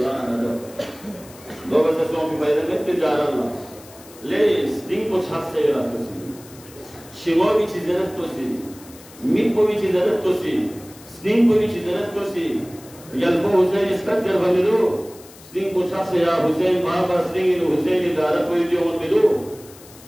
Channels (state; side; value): noise; left; hiss, 21 dB below the sound